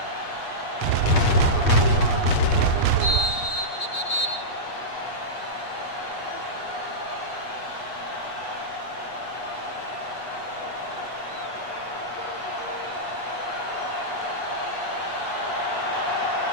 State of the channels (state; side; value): late; right; 8.4 ms